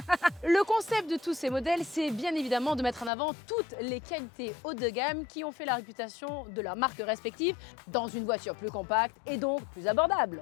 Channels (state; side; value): drops out; right; at 3.1 s